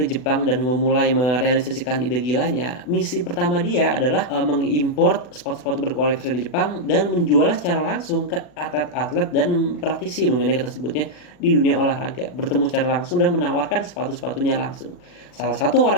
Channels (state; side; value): late; right; 40 ms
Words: Jepang dan memulai merealisasikan ide gilanya, misi pertama dia adalah mengimport sepatu-sepatu berkualitas dari Jepang dan menjualnya secara langsung ke atlet-atlet dan praktisi, mungkin kita sebutnya, di dunia olahraga. Bertemu secara langsung dan menawarkan sepatu-sepatunya langsung. Salah satu